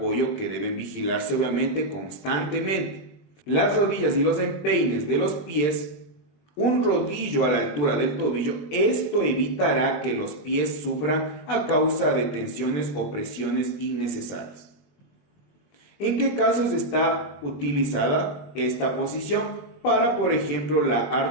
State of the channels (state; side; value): late; right; 20 ms